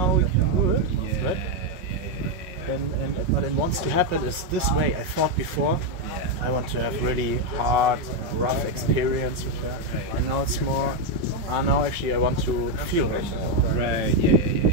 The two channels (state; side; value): late; left; 5.4 ms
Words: we can do it. Yeah, Right? But it wants to happen is this way. I thought before, I want to have really hard, rough experience with her, and now it's more, now actually I want to feel her more. Right.